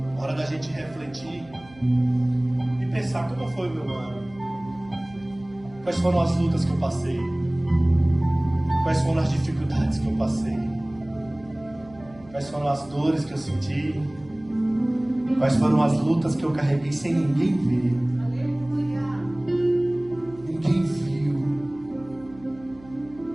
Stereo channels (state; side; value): noise; right; hum, 23 dB below the sound